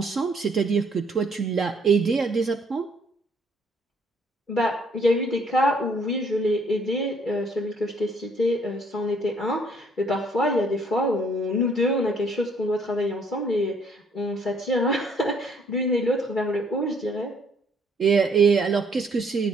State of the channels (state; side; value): normal; both; correlation 0.64